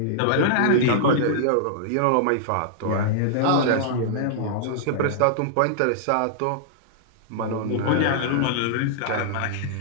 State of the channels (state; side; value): different; both; correlation -0.02